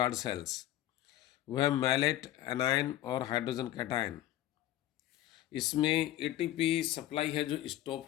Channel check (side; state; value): right; quieter; 14.0 dB